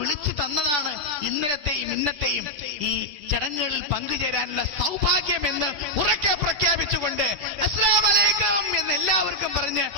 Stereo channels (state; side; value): late; left; 10 ms